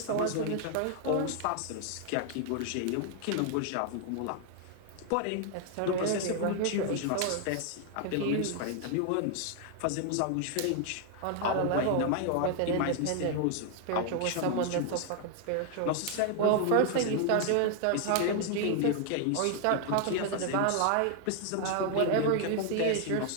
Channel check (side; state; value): both; different; correlation 0.00